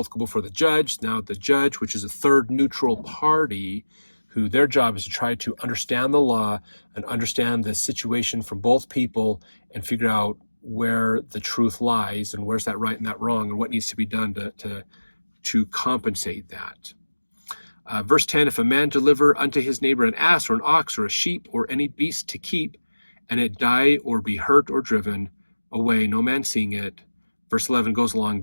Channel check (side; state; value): both; inverted; correlation -1.00